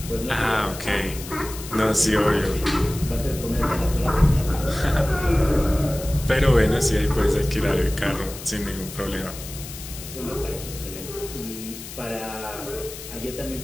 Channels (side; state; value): left; noise; hiss, 12 dB below the sound